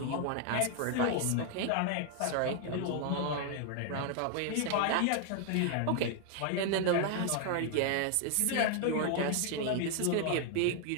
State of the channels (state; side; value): different; both; correlation 0.00